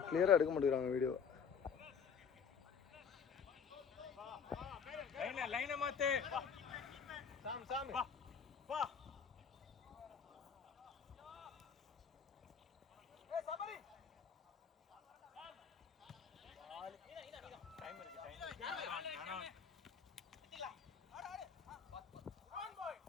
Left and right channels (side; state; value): right; quieter; 6.6 dB